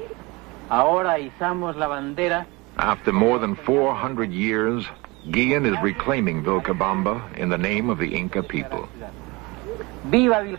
Ahora izamos la bandera. After more than 400 years, Guillen is reclaiming Vilcabamba in the name of the Inca people. Viva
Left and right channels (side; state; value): left; quieter; 24.5 dB